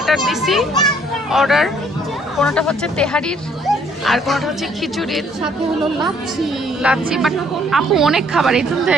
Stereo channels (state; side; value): normal; both; correlation 0.63